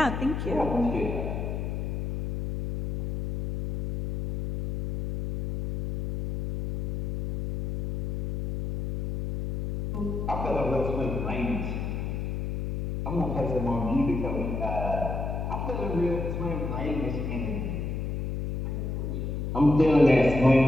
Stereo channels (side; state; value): left; noise; hum, 2 dB below the sound